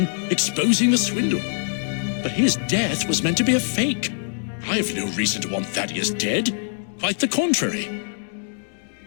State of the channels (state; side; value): silent; right; digital silence